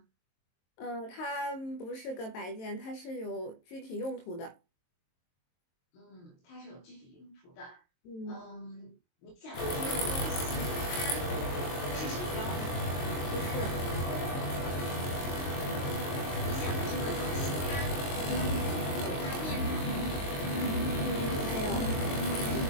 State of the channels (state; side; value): late; right; 22 ms